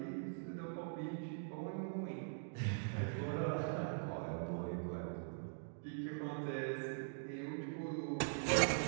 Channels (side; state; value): left; silent; digital silence